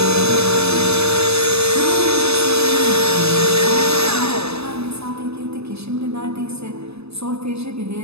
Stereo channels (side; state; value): left; late; 0.79 ms